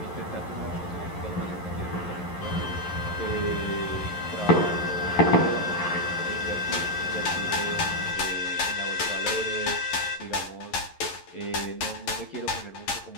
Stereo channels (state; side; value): late; right; 11 ms